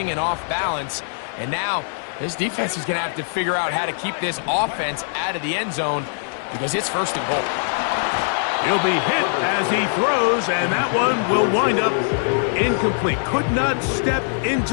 and off balance. And now this defense is going to have to figure out how to keep this offense out of the end zone because it's 1st and goal. He'll be hit as he throws, and that one will wind up incomplete. Could not step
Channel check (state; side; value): silent; right; digital silence